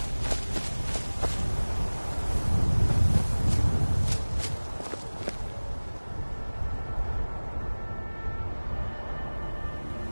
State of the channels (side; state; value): both; inverted; correlation -1.00